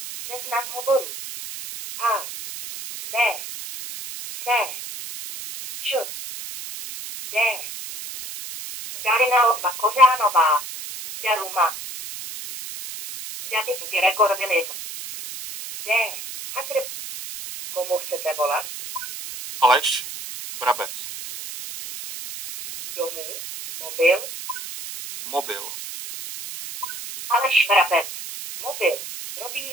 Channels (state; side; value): noise; right; hiss, 10 dB below the sound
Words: Seznam hovorů. A. B. C. Č. D. Darina Odva Kořánová. Deluma. David Gregor Vilim. D. Komu chcete volat? Aleš Brabec. Domů? Mobil? Mobil. Aleš Vrabec. Mobil.